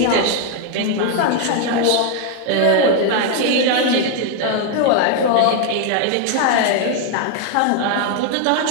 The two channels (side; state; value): both; different; correlation 0.01